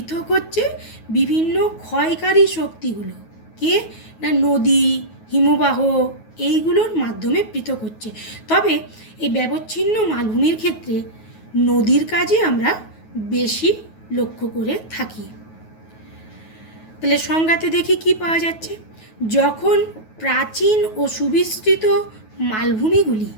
হচ্ছে বিভিন্ন ক্ষয়কারী শক্তিগুলো। কে? না, নদী, হিমবাহ, এইগুলোর মাধ্যমে পৃথক হচ্ছে। তবে এই ব্যবচ্ছিন্ন মালভূমির ক্ষেত্রে নদীর কাজে আমরা বেশি লক্ষ্য করে থাকি। তাহলে সংজ্ঞাতে দেখি কি পাওয়া যাচ্ছে। যখন প্রাচীন ও সুবিস্তৃত মালভূমিগুলি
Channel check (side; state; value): right; late; 9.3 ms